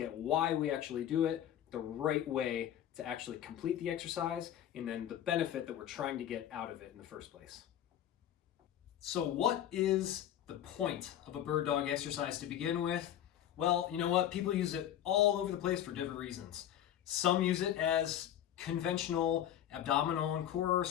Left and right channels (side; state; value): right; quieter; 11.2 dB